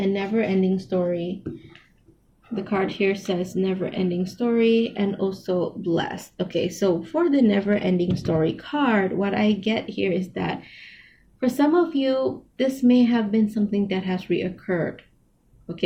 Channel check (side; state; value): both; identical; correlation 1.00